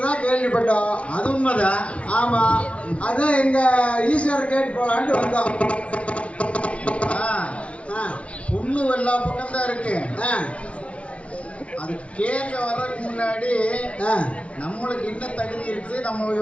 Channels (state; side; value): late; right; 0.062 ms